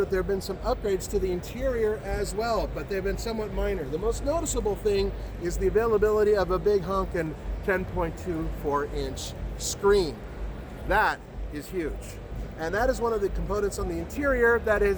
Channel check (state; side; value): identical; both; correlation 1.00